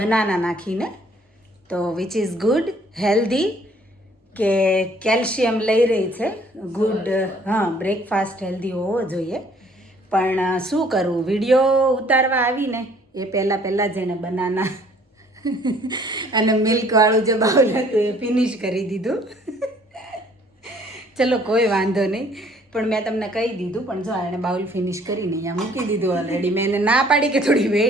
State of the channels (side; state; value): both; normal; correlation 0.59